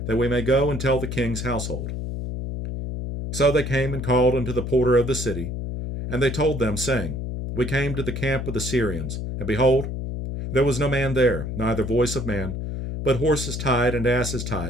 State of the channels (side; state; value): left; noise; hum, 5 dB below the sound